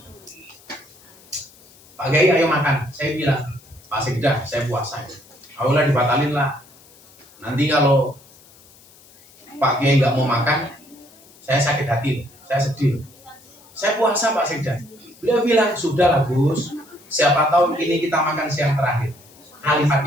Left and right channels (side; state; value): left; noise; hiss, 26 dB below the sound